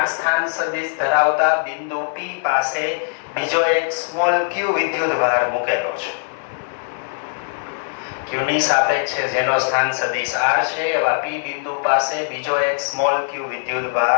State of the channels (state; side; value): silent; right; 64 dB below the other